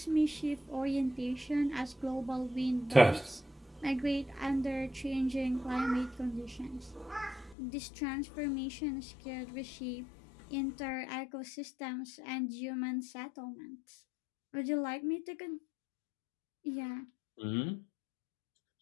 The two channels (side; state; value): right; drops out; at 7.6 s